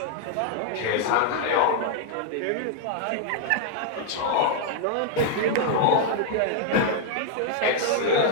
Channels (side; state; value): both; different; correlation 0.00